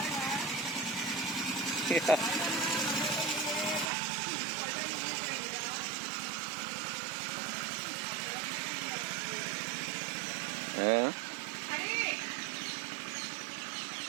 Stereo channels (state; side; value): drops out; left; at 3.9 s